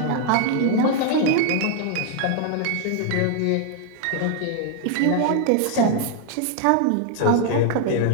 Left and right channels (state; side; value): different; both; correlation 0.00